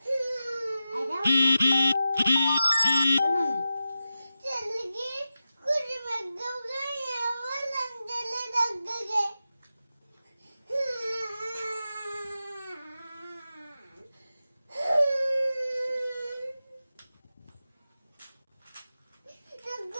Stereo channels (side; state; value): both; inverted; correlation -0.92